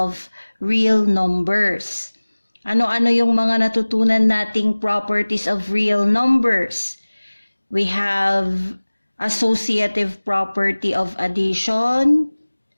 real numbers. Ano-ano yung mga natutunan nating properties of real numbers? We have associative property of addition,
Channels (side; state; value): both; inverted; correlation -1.00